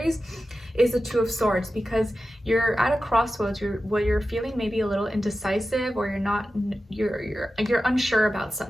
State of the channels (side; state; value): both; normal; correlation 0.93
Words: is the Two of Swords, because you're at a crossroads. You're feeling maybe a little indecisive, or you're unsure about